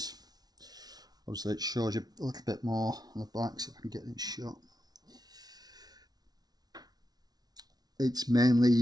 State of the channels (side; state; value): left; late; 0.19 ms